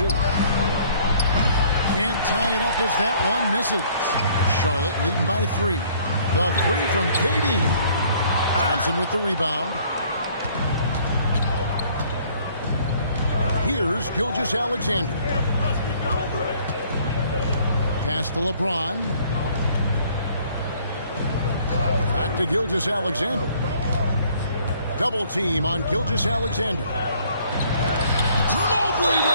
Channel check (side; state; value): both; inverted; correlation -0.59